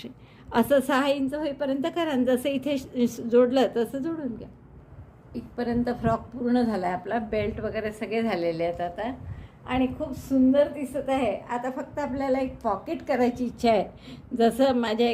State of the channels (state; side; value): identical; both; correlation 1.00